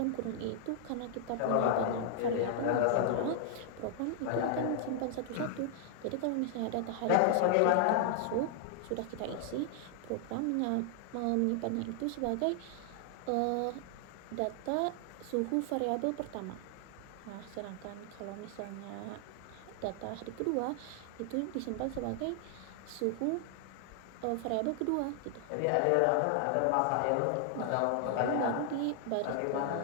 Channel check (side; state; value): both; different; correlation 0.00